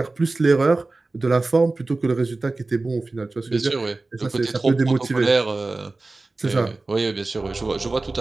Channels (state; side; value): quieter; left; 3.3 dB